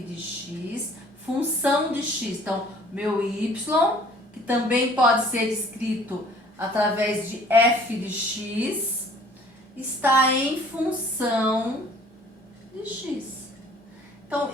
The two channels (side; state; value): both; normal; correlation 0.54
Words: X, função de X. Então, meu Y, que também pode ser escrito através de F de X, está em função de X. Então,